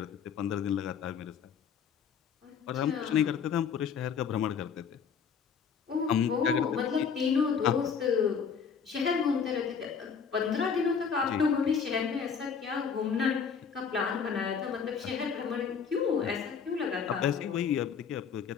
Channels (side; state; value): right; quieter; 6.6 dB